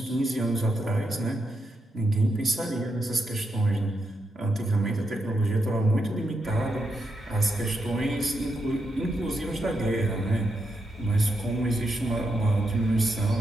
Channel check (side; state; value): both; normal; correlation 0.83